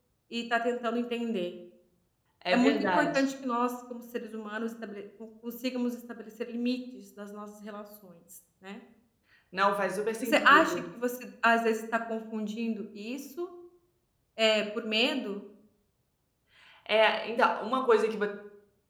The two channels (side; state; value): both; identical; correlation 1.00